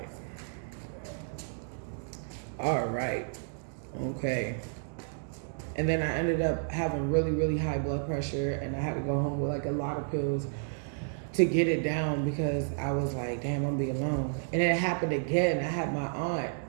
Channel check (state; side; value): silent; left; digital silence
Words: all right, okay. And then I ended up having really, really high blood pressure, and I had to go home with like a lot of pills to get it down because I was like, damn, I'm gonna be alone. And it happened again. I had my aunt,